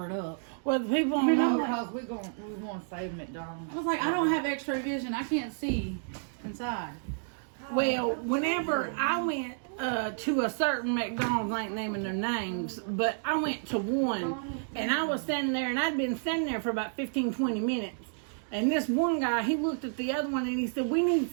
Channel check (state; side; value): silent; left; digital silence